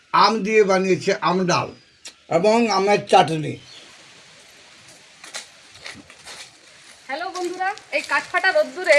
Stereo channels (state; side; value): identical; both; correlation 1.00